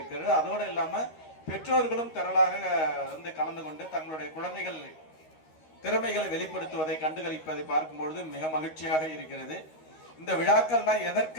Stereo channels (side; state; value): right; late; 13 ms